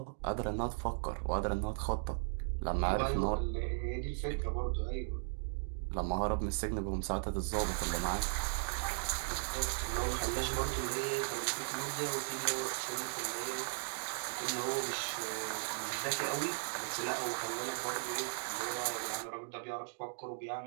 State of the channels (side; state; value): left; silent; digital silence